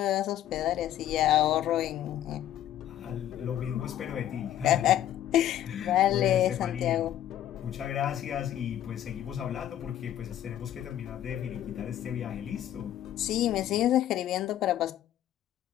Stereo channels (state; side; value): quieter; right; 11.7 dB